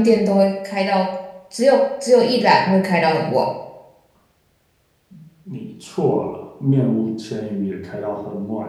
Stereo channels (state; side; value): identical; both; correlation 1.00